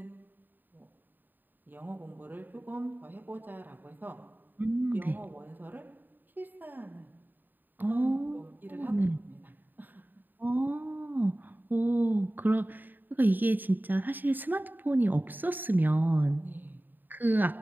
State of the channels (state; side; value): late; left; 0.090 ms